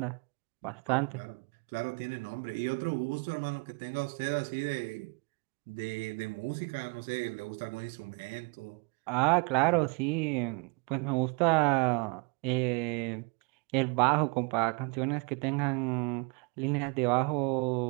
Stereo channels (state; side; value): quieter; left; 31.6 dB